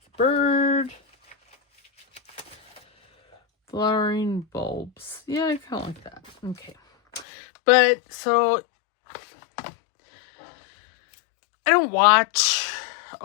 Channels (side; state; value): right; drops out; at 7.2 s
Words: bird. Flowering bulbs. Yeah, I kind of like that. Okay. But, so, I don't watch